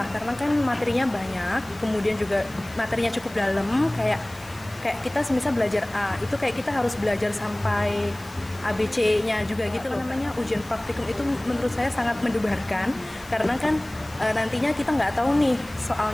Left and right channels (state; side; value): noise; left; hiss, 23 dB below the sound